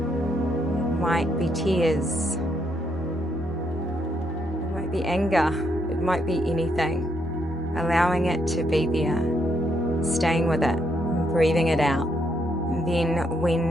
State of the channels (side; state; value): both; normal; correlation 0.75